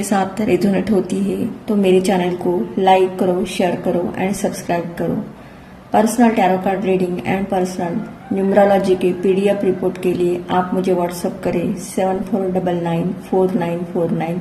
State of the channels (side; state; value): both; identical; correlation 1.00